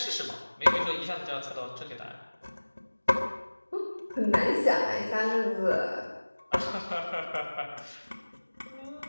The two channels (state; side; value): inverted; both; correlation -1.00